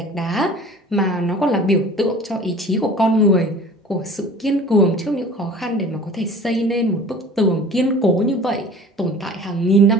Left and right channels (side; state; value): both; normal; correlation 0.44